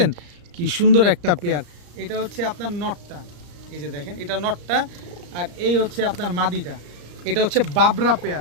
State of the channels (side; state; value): left; late; 34 ms